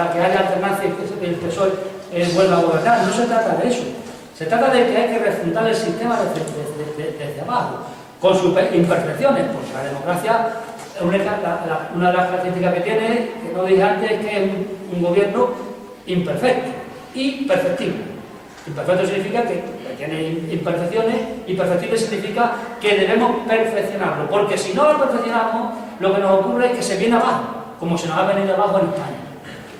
que haya alternancia y que el PSOE vuelva a gobernar. No se trata de eso. Se trata de que hay que refundar el sistema desde abajo, con sus imperfecciones, porque la democracia, una de las características que tiene, que no dije antes, es que es un gobierno imperfecto y perfectible. Imperfecto significa que tiene imperfecciones, y perfectible significa que debemos perfeccionarlo, porque si no lo perfeccionamos, lo que nos ocurre es que se viene abajo, como se nos ha venido abajo en España.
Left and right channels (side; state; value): both; identical; correlation 1.00